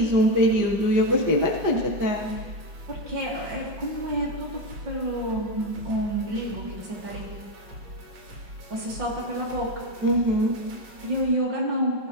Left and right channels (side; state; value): left; late; 5.4 ms